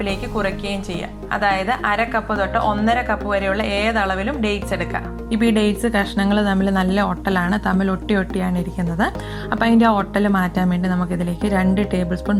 കുറയ്ക്കുകയും ചെയ്യാം. അതായത് 1/2 കപ്പ് തൊട്ട് 1.5 കപ്പ് വരെയുള്ള ഏതളവിലും ഡേറ്റ്സ് എടുക്കാം. ഇപ്പോൾ ഈ ഡേറ്റ്സ് കഷ്ണങ്ങൾ തമ്മിൽ നല്ല ഒട്ടലാണ്, തമ്മിൽ ഒട്ടിയാണ് ഇരിക്കുന്നത്. അപ്പോൾ അതിൻ്റെ ആ ഒട്ടൽ മാറ്റാൻ വേണ്ടി നമുക്കിതിലേക്ക് 2 ടേബിൾ സ്പൂൺ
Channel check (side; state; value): both; identical; correlation 1.00